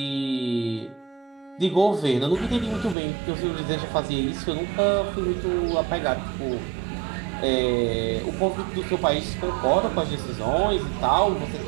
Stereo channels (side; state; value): left; drops out; at 3.0 s